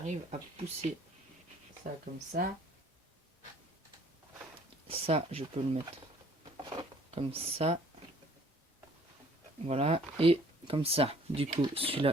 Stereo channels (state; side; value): normal; both; correlation 0.57